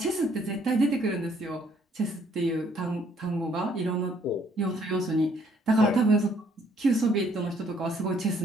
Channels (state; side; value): normal; both; correlation 0.65